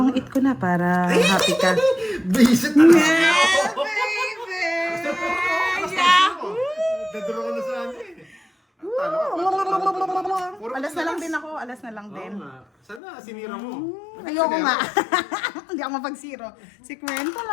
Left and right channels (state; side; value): drops out; right; at 13.0 s